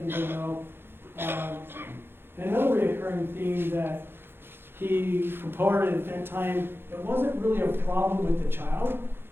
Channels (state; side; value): late; left; 0.11 ms